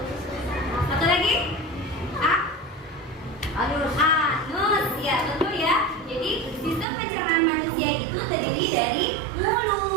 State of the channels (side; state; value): left; drops out; at 6.9 s